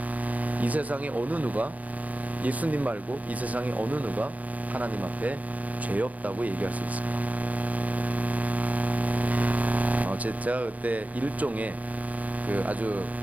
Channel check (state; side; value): late; left; 0.070 ms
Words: 이 세상에 어느 누가, 예수님 말고 이 세상에 어느 누가 하나님 앞에 죄 없다고 얘기할 수 있습니다. 제가 그때 일종의 그 아주